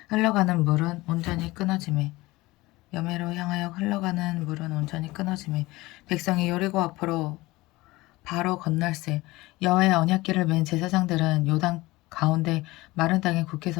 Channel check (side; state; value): right; quieter; 20.2 dB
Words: 흘러가는 물은 온전히 끊어지매 백성이 여리고 앞으로 바로 건널세. 여호와의 언약궤를 맨 제사장들은 요단 가운데 마른 땅에 굳게